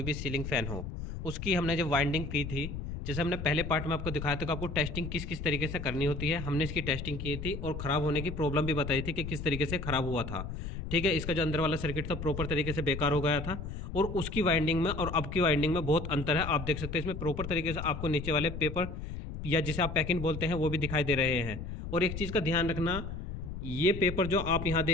भी सीलिंग फैन हो, उसकी हमने जब वाइंडिंग की थी, जैसे हमने पहले पार्ट में आपको दिखाया था कि आपको टेस्टिंग किस किस तरीके से करनी होती है। हमने इसकी टेस्टिंग की थी और ख़राब होने की प्रॉब्लम भी बताई थी कि किस तरीके से ख़राब हुआ था। ठीक है, इसका जो अंदर वाला सर्किट था प्रॉपर तरीके से बेकार हो गया था और उसकी वाइंडिंग में और अब की वाइंडिंग में बहुत अंतर है। आप देख सकते हैं इसमें प्रॉपर तरीके से आपको नीचे वाले पेपर या जिसे आप पैकिंग बोलते हैं वो भी दिखाई दे रहे हैं। और एक चीज़ का ध्यान रखना, ये पेपर जो आप यहाँ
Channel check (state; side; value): noise; left; rumble, 7 dB below the sound